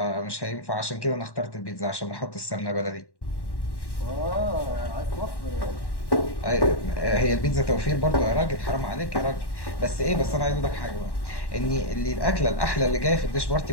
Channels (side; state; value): right; late; 1.1 ms